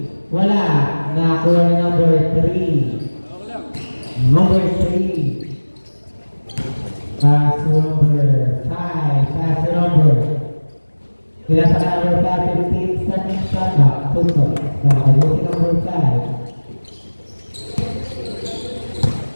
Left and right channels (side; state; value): both; inverted; correlation -1.00